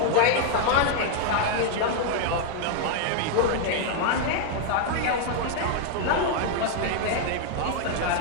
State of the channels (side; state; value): both; different; correlation 0.00